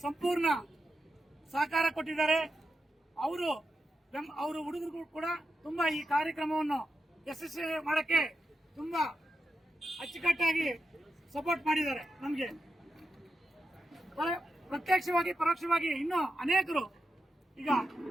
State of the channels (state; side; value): normal; both; correlation 0.88